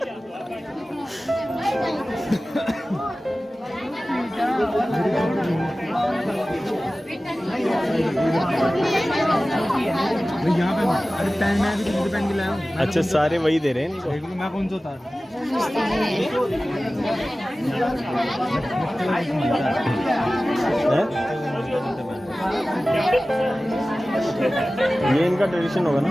यहाँ पे अरे पहन, मैं भी तुझे पहन के लाया हूँ। अच्छा, सारे वही दे रहे हैं इनको। देख लो मैं कौन सा उतार। ये इनका ट्रेडिशन होगा ना।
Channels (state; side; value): normal; both; correlation 0.96